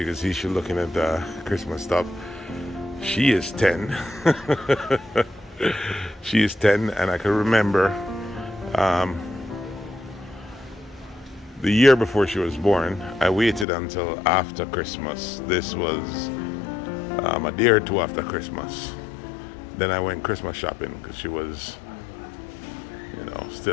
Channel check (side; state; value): right; drops out; at 13.7 s